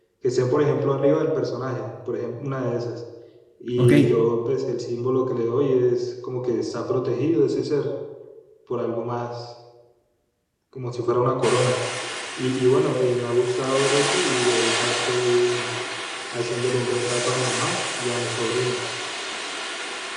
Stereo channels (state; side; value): identical; both; correlation 1.00